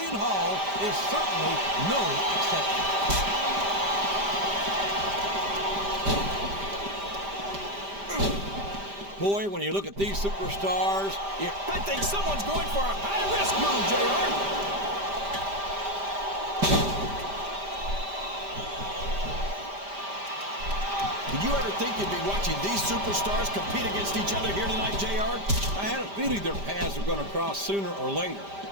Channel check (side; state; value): left; late; 5.0 ms